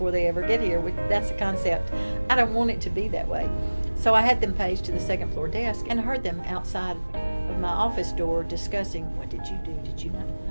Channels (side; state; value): both; inverted; correlation -1.00